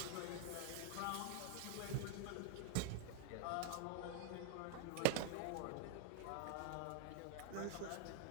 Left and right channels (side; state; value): both; different; correlation 0.00